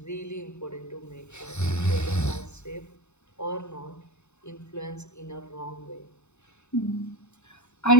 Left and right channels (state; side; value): late; right; 0.82 ms